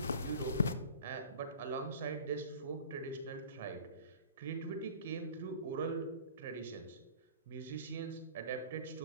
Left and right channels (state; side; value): inverted; both; correlation -0.43